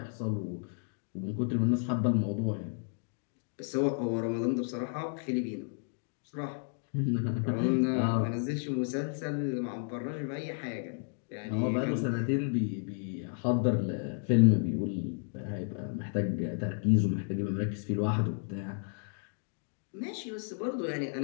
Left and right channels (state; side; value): silent; right; 56 dB below the other